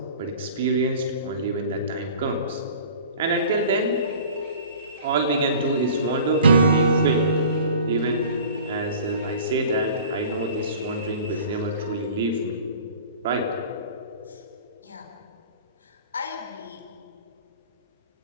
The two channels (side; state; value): both; inverted; correlation -0.44